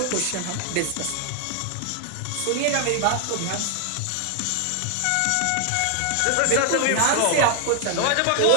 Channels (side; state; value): both; different; correlation 0.00